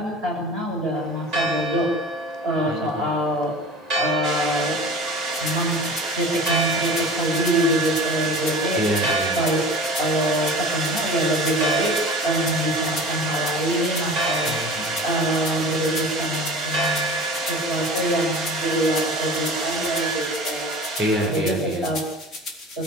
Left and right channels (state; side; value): normal; both; correlation 0.38